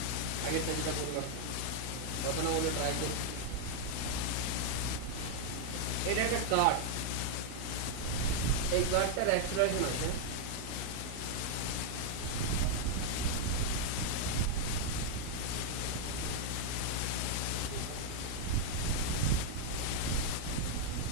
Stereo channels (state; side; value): different; both; correlation 0.00